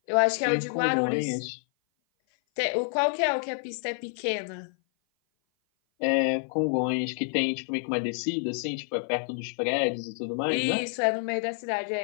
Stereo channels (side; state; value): right; silent; 56 dB below the other